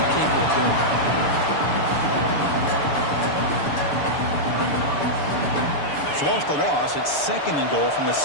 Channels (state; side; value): late; right; 6.9 ms